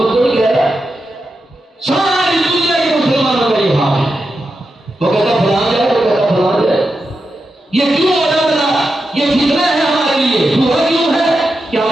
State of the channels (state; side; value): normal; both; correlation 0.88